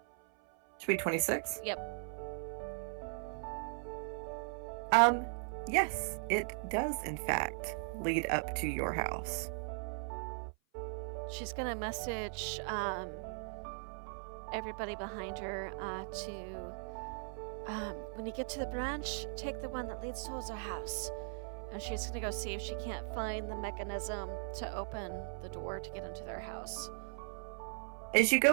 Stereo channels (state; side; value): silent; left; 52 dB below the other